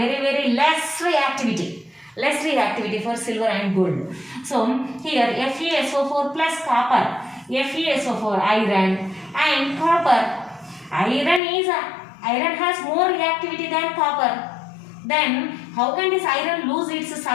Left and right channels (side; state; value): right; drops out; at 11.4 s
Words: less reactivity. Less reactivity for silver and gold. So here FeSO4 plus copper, FeSO4 iron and copper. Iron has more reactivity than copper. Then how can this iron lose its